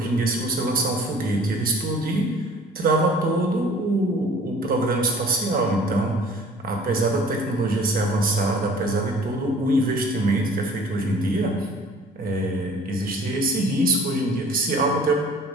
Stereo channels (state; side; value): normal; both; correlation 0.49